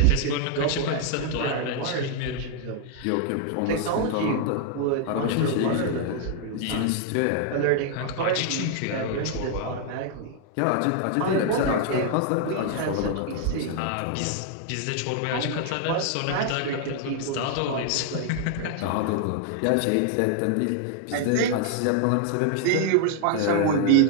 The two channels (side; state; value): both; different; correlation 0.00